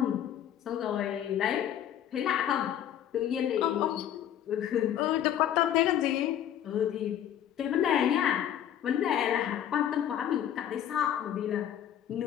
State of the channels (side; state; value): right; quieter; 10.5 dB